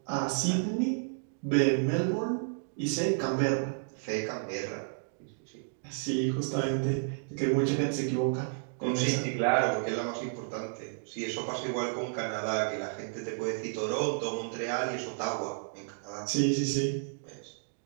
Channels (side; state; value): left; silent; digital silence